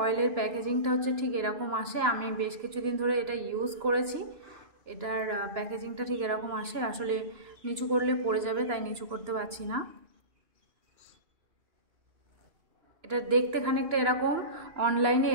অয়েলের প্যাকেজিংটা হচ্ছে ঠিক এরকম আসে। আমি বেশ কিছুদিন ধরে এটা ইউজ করেছি, এটার প্যাকেজিংটা ঠিক এরকম আসে। আসলে নিচু করলে পড়ে যাবে তাই নিচু করতে পারছি না। এটা দেখতে খানিকটা এরকম, অনলাইনে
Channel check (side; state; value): left; late; 2.9 ms